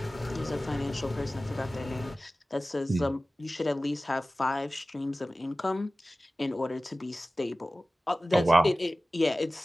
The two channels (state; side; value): normal; both; correlation 0.96